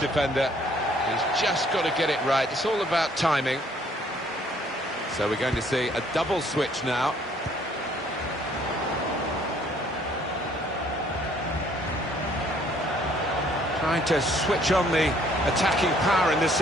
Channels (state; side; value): normal; both; correlation 0.62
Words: He's just got to get it right. It's all about timing. So we're going to see a double switch now. Trying to switch on the attacking power in this